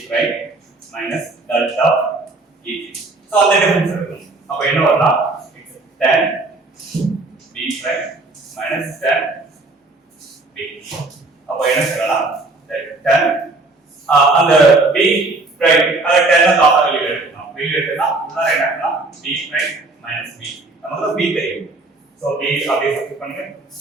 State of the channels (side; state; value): left; quieter; 3.2 dB